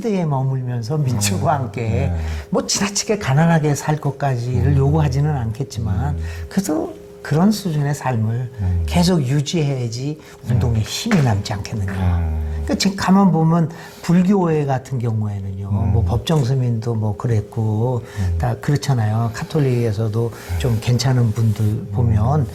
머물면서 민중과 함께 뭐 지나치게 가난하게 살 것까지를 요구하지는 않겠지만 그래도 그런 수준의 삶을 계속 유지해야지 운동에 힘이 남지 않겠느냐. 그러니까 지금 가만 보면 불교회 같은 경우에는요, 뭐 법정스님도 뭐 그랬고 다 그렇잖아요. 카톨릭에서도 좀 괜찮은 분들 보면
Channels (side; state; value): both; identical; correlation 1.00